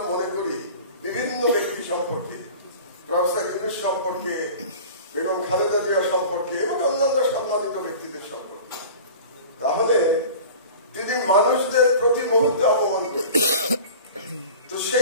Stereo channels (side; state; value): both; inverted; correlation -0.39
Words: মনে করি বিভিন্ন ব্যক্তি সম্পর্কে, প্রফেসর ইউনূস সম্পর্কে, বেগম খালেদা জিয়া সম্পর্কে এবং অন্যান্য সম্মানিত ব্যক্তিদের সম্পর্কে, তাহলে তিনি মানুষদের প্রতি মুহূর্তে অপমান করতেন। তো